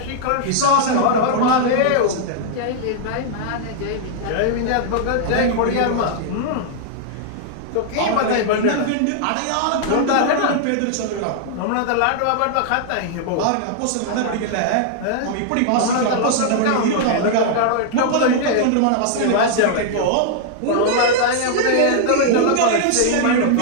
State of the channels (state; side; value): different; both; correlation -0.01